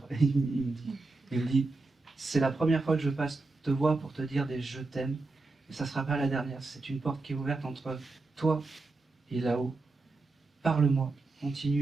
Il me dit, c'est la première fois que je passe te voir pour te dire des je t'aime, mais ça ne sera pas la dernière. C'est une porte qui est ouverte entre toi et là-haut. Parle-moi.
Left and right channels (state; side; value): quieter; left; 3.5 dB